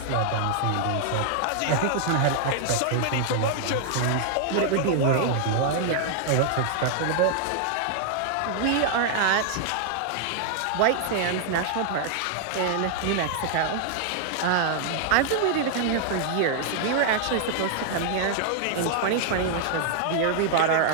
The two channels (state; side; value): different; both; correlation 0.00